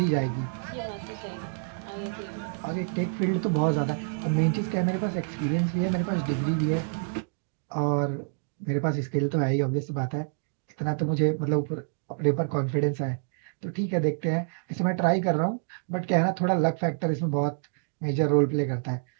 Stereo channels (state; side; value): silent; left; digital silence